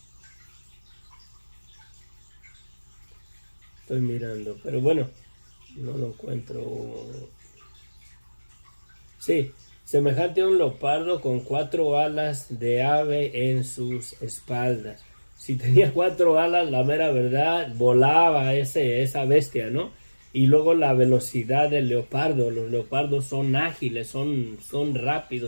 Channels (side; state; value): both; inverted; correlation -1.00